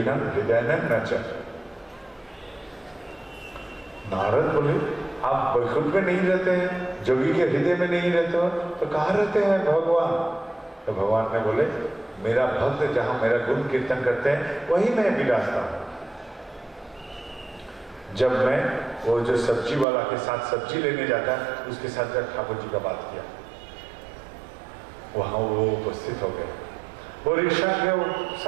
हृदयानां न च। नारद बोले, आप वैकुंठ में नहीं रहते हैं, जोगी के हृदय में नहीं रहते हो, तो कहाँ रहते हैं भगवान? तो भगवान ने बोले, मेरा भक्त जहां मेरा गुण कीर्तन करते हैं वही मैं विराजता हूं। जब मैं वो जो सब्जी वाला के साथ सब्जी लेने जाता है, उसके साथ जब ठाकुर जी का बात किया, वहां वो उपस्थित हो गए। वो रिक्शा के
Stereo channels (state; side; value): drops out; left; at 19.9 s